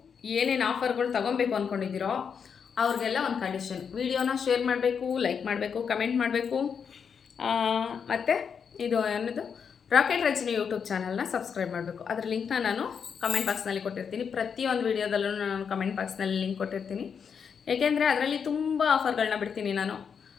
ಏನೇನು ಆಫರ್ಗಳು ತೊಗೊಬೇಕು ಅಂದ್ಕೊಂಡಿದ್ದೀರೋ ಅವ್ರಿಗೆಲ್ಲ ಒಂದು ಕಂಡೀಷನ್. ವಿಡಿಯೋನ ಶೇರ್ ಮಾಡಬೇಕು, ಲೈಕ್ ಮಾಡಬೇಕು, ಕಮೆಂಟ್ ಮಾಡಬೇಕು. ಮತ್ತು ಇದು ಏನದು ರಾಕೆಟ್ ರಚನೆ ಯೂಟ್ಯೂಬ್ ಚಾನಲ್ನ ಸಬ್ಸ್ಕ್ರೈಬ್ ಮಾಡಬೇಕು. ಅದರ ಲಿಂಕ್ನ ನಾನು ಕಮೆಂಟ್ ಬಾಕ್ಸ್ನಲ್ಲಿ ಕೊಟ್ಟಿರ್ತೀನಿ. ಪ್ರತಿಯೊಂದು ವೀಡಿಯೋದಲ್ಲೂ ನಾನು ಕಮೆಂಟ್ ಬಾಕ್ಸ್ನಲ್ಲಿ ಲಿಂಕ್ ಕೊಟ್ಟಿರ್ತೀನಿ. ಏಕೆಂದರೆ ಅದರಲ್ಲಿ ತುಂಬ ಆಫರ್ಗಳನ್ನ ಬಿಡ್ತೀನಿ ನಾನು.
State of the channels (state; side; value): quieter; right; 6.7 dB